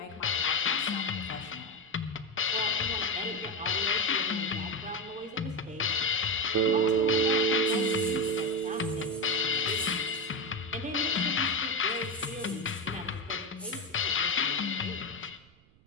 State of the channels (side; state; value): right; noise; rumble, 30 dB below the sound